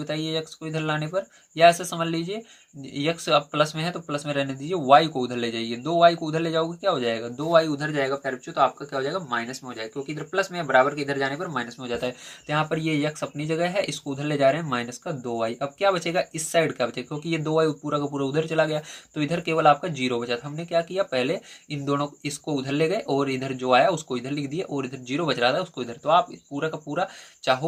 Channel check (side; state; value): both; identical; correlation 1.00